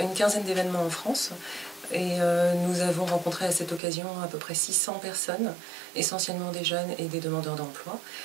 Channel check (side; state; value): left; drops out; at 3.8 s